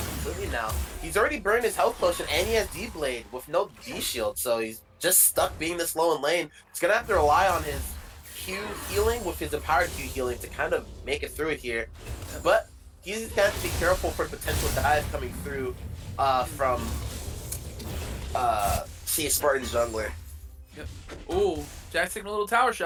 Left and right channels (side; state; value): both; identical; correlation 1.00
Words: now. He's already burned his health potion and he has D-Blade with no D-Shield, so he's just stuck being this low in lane. He's gonna have to rely on his Q healing with his empowered Q healing to kind of make it through it here. But he's gonna have to be careful for potential dive coming through from see a Spartan jungler. Yep. Ooh, Jax taking a little tower